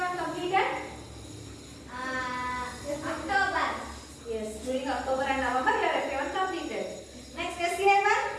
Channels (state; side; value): identical; both; correlation 1.00